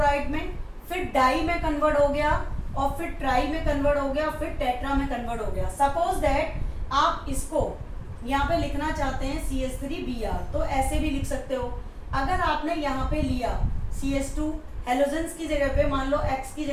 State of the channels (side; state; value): both; identical; correlation 1.00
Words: में, फिर डाई में कन्वर्ट हो गया, और फिर ट्राई में कन्वर्ट हो गया, फिर टेट्रा में कन्वर्ट हो गया। सपोज दैट आप इसको यहाँ पे लिखना चाहते हैं CH3Br, तो ऐसे भी लिख सकते हो। अगर आपने यहाँ पे लिया CH2 हेलोजेंस की जगह पे, मान लो X की